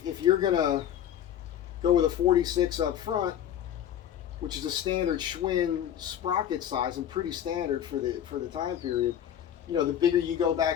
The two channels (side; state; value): right; quieter; 10.2 dB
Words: you're going to go with a 46 up front, which is a standard Schwinn sprocket size and pretty standard for the time period, you know, the bigger you go